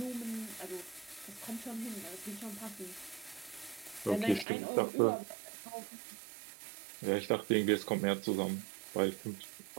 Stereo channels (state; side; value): drops out; left; at 4.5 s